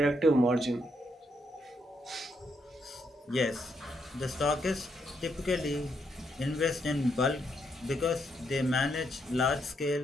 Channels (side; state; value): both; normal; correlation 0.77